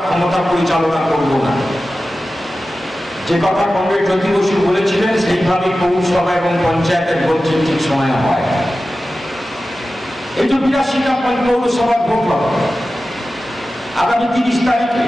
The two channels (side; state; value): both; normal; correlation 0.94